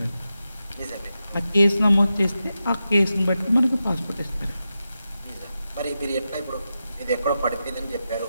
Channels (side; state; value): both; inverted; correlation -0.90